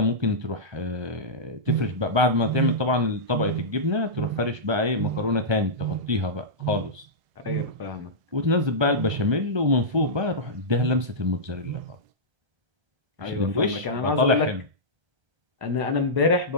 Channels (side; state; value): left; late; 1.3 ms